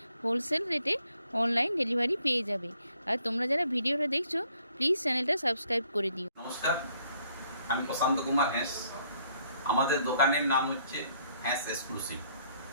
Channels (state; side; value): inverted; both; correlation -0.67